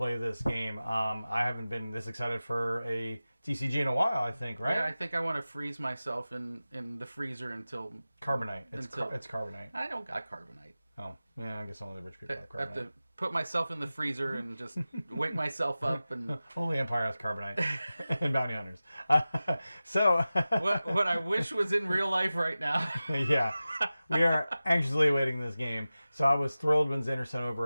this game. I haven't been this excited for a TCG in a while, I think, right? Yeah, I think I want to freeze myself in the freezer until... Carbonite. It's carbonite. I don't got carbonite. Oh, yeah, I guess only the rich people have I have carbonite. to put myself in the freezer and just wake myself up and... Only Empire has carbonite and bounty hunters. So... what I wish was in real life right now. Yeah, we are anxiously awaiting this game. So I was thrilled when Xander sent over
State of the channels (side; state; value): both; inverted; correlation -0.96